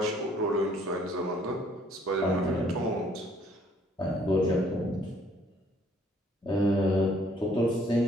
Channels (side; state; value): both; normal; correlation 0.62